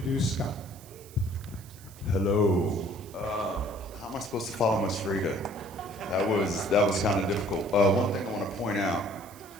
Scott. Hello. How am I supposed to follow Miss Frida? That was kind of difficult. One thing I want to point out,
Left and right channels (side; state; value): right; noise; hiss, 21 dB below the sound